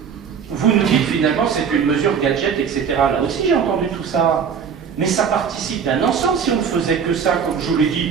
vous nous dites finalement c'est une mesure gadget, etc. Là aussi j'ai entendu tout ça. Mais ça participe d'un ensemble. Si on ne faisait que ça, comme je vous l'ai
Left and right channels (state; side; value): quieter; left; 6.9 dB